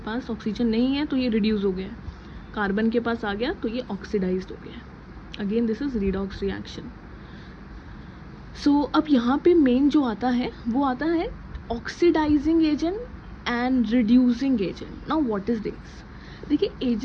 ऑक्सीजन नहीं है तो ये रिड्यूस हो गया है, कार्बन के पास आ गया तो ये ऑक्सीडाइज्ड हो गया है। Again this is redox reaction. So अब यहाँ पे मेन जो आता है वो आता है oxidising agent and reducing agent. Now what is this? देखिए,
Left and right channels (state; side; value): identical; both; correlation 1.00